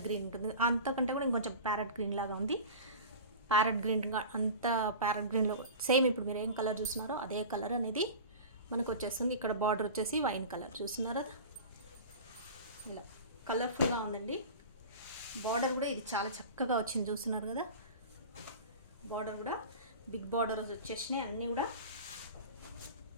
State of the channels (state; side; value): inverted; both; correlation -0.34